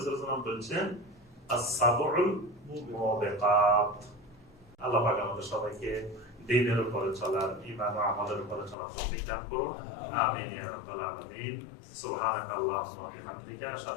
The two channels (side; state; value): right; drops out; at 8.8 s